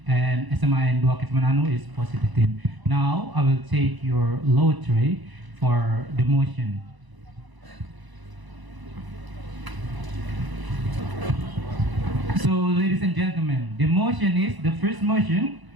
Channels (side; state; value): left; late; 1.0 ms